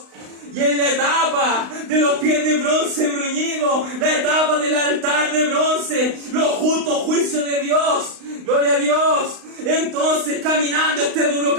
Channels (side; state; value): left; late; 35 ms